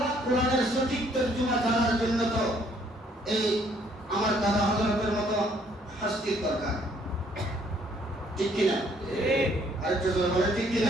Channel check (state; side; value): normal; both; correlation 0.64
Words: কোরআনের সঠিক তর্জমা জানার জন্য তো এই আমার দাদা হযরতের মতো হাস্তির দরকার, ঠিক কিনা? আরেকটু জোরে বলে ঠিক